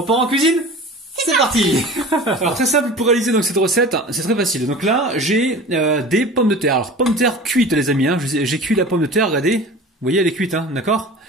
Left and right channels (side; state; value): both; normal; correlation 0.38